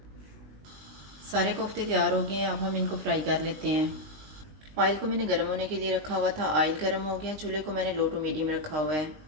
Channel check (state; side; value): late; left; 19 ms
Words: सारे कोफ्ते तैयार हो गए हैं, अब हम इनको फ्राई कर लेते हैं। ऑयल को मैंने गर्म होने के लिए रखा हुआ था। ऑयल गर्म हो गया, चूल्हे को मैंने लो टू मीडियम रखा हुआ है।